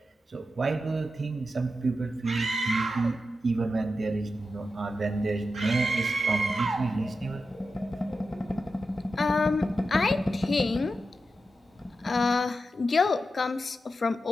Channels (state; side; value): normal; both; correlation 0.90